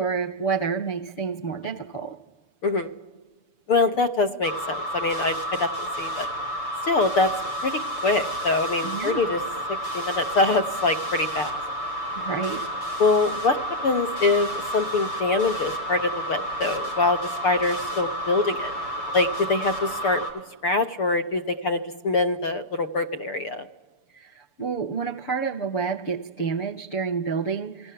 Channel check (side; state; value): right; late; 6.9 ms